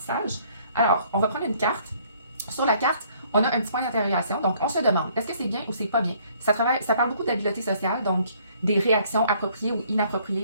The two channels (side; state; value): both; inverted; correlation -0.62